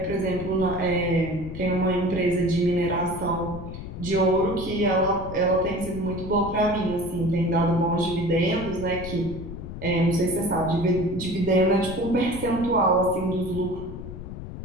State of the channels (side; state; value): left; noise; rumble, 10 dB below the sound